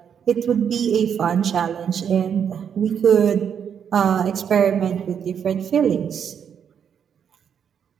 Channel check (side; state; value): left; quieter; 7.9 dB